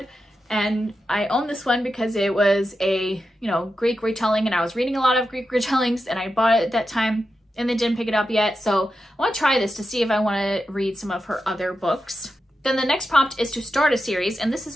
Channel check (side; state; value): both; normal; correlation 0.89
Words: and I own this one because it was a, you know, Greek retelling, and I was reading a lot of Greek retellings, and I bought it at that time and then didn't pick it up yet. So I want to try this to see if I want to read some of her other books. Then the next prompt is to start a series, and this